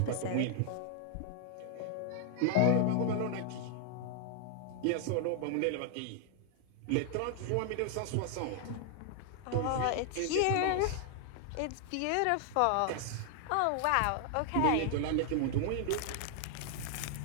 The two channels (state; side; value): different; both; correlation 0.00